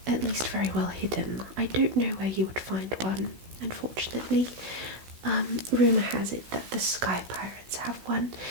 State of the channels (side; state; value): left; late; 16 ms